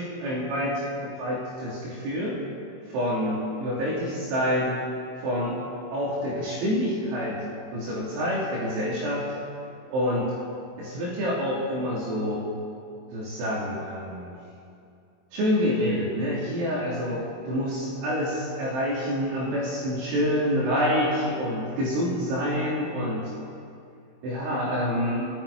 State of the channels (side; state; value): left; late; 23 ms